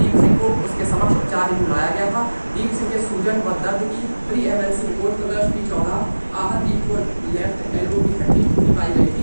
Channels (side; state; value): both; inverted; correlation -1.00